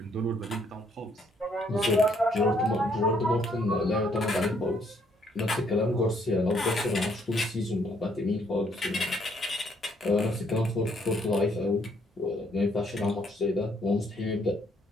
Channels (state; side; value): normal; both; correlation 0.68